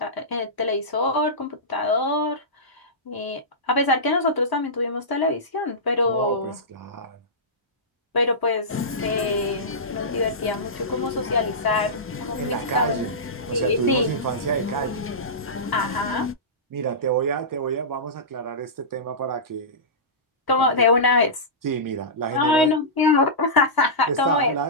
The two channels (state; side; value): normal; both; correlation -0.17